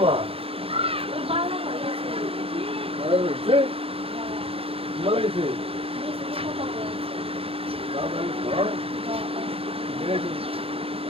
মা ভালো হয়েছে ভালো হয়েছে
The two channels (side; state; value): left; late; 0.27 ms